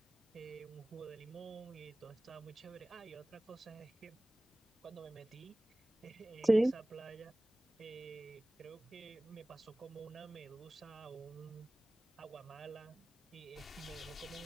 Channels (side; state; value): both; normal; correlation 0.98